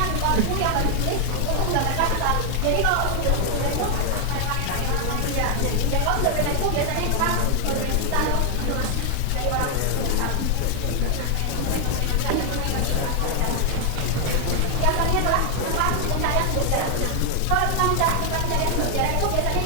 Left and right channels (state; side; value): different; both; correlation 0.00